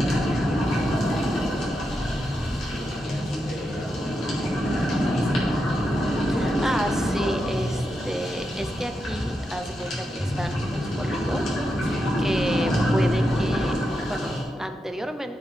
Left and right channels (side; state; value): both; normal; correlation 0.86